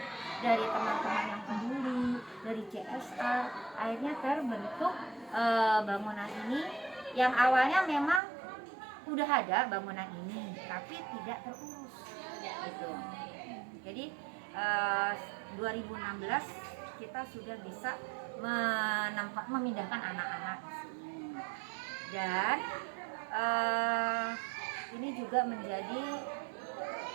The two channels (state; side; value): drops out; left; at 8.2 s